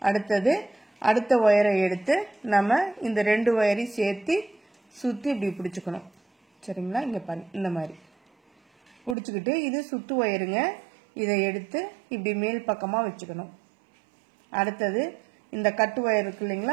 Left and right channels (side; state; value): left; drops out; at 9.2 s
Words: அடுத்தது அடுத்த ஒயரை எடுத்து நம்ம இந்த 2 ஒயரையும் சேர்த்து சுற்றி இப்படி பிடிச்சிக்கணும். சரிங்களா? இங்கே பாருங்க, இந்த மாதிரி பிடிச்சிக்கிட்டு இது சுத்து ஒயருங்க. இதை எடுத்து இப்படி மேல் பக்கமாக வச்சுக்கணும். அடுத்தது இந்த கட்டு ஒயர் இருக்கு